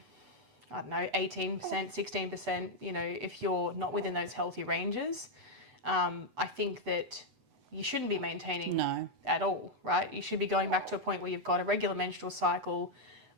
18%, 16%, if you're not within those healthy ranges, I think that you shouldn't be maintaining at all, right? You should be going back to a point where you've got a regular menstrual cycle,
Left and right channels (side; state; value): left; late; 8.0 ms